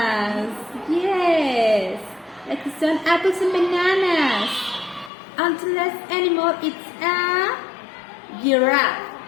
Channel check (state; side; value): drops out; right; at 5.1 s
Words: Yes, like some apples and bananas. And the last animal is a giraffe.